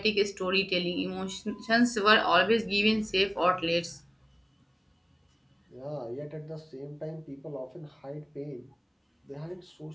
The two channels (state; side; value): identical; both; correlation 1.00